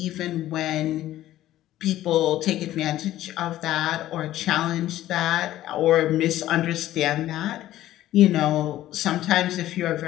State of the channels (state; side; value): quieter; right; 14.1 dB